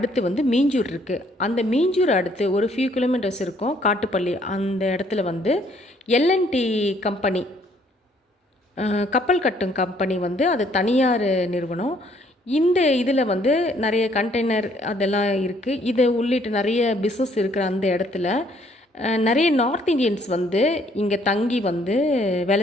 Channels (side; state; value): both; normal; correlation 0.64